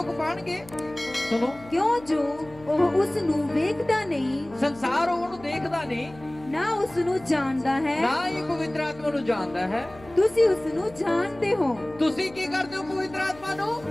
ਪਾਣਗੇ? ਸੁਣੋ, ਕਿਉਂ ਜੋ ਉਹ ਉਸ ਨੂੰ ਵੇਖਦਾ ਨਹੀਂ, ਸੰਸਾਰ ਉਹਨੂੰ ਦੇਖਦਾ ਨਹੀਂ, ਨਾ ਉਸ ਨੂੰ ਜਾਣਦਾ ਹੈ, ਨਾ ਹੀ ਪਵਿੱਤਰ ਆਤਮਾ ਨੂੰ ਜਾਣਦਾ ਹੈ। ਤੁਸੀਂ ਉਸ ਨੂੰ ਜਾਣਦੇ ਹੋ। ਤੁਸੀਂ ਕੀ ਕਰਦੇ ਹੋ ਪਵਿੱਤਰ ਆਤਮਾ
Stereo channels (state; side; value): noise; left; hum, 21 dB below the sound